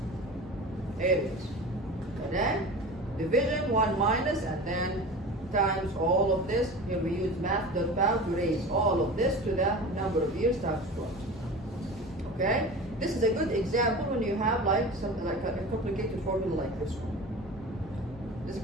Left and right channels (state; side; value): normal; both; correlation 0.34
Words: Here it is. And then division 1 minus and then times all of this. Here we use math.pow to raise all of this to the number of years times 12. Okay? This is a good example when you have something like a complicated formula like this one. Is